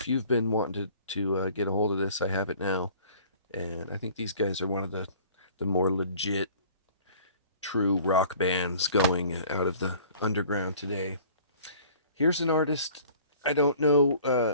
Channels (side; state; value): both; inverted; correlation -0.50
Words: you've been wanting to get a hold of this, I have it now. And I think these guys are one of the more legit, true rock bands going out of the underground today. Here's an artist. I don't know